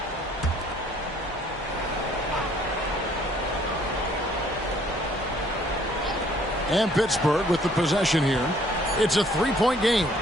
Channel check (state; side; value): normal; both; correlation 0.61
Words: And Pittsburgh with the possession here. It's a 3-point game.